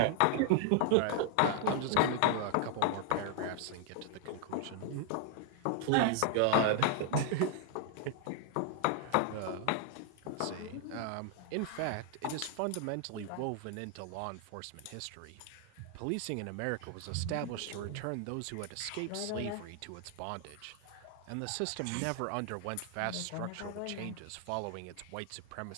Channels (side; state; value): both; different; correlation 0.00